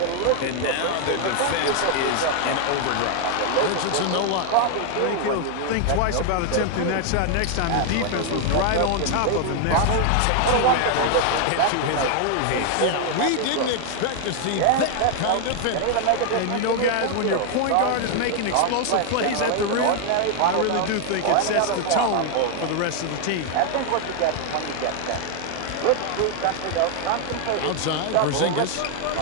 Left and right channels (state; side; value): different; both; correlation 0.00